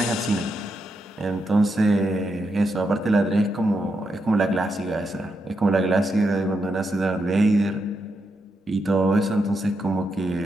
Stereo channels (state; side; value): normal; both; correlation 0.83